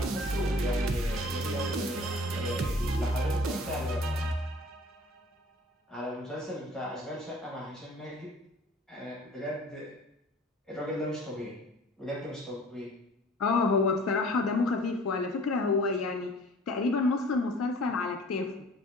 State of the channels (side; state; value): both; normal; correlation 0.48